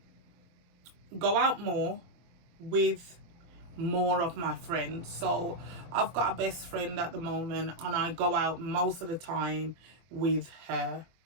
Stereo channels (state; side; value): late; left; 24 ms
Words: go out more with more of my friends. So I've got a best friend at the moment and I go out most of the time with her.